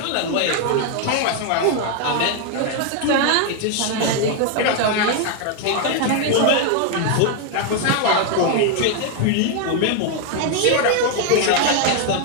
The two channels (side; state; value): both; different; correlation 0.01